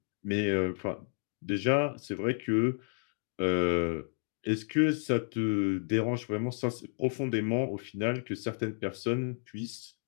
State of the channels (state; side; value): silent; right; digital silence